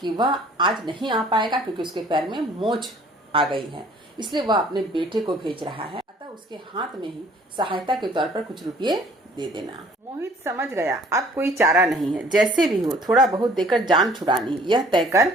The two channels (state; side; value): normal; both; correlation 0.55